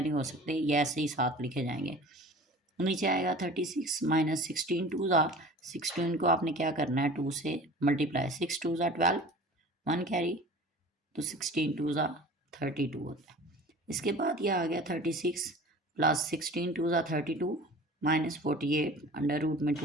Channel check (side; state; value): both; normal; correlation 0.41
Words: नहीं हो सकते, ये ऐसे ही साथ लिखे जाएंगे। नीचे आएगा 36 - 16 × 2 = 16 को आपने क्या करना है, 2 से मल्टीप्लाई, 6 × 2 = 12, 1 कैरी, तो 16 × 2 = 32 होता है। इसके बाद ये आ गया 36 प्लस 16 × 2 = 32 माइनस 48, √2 में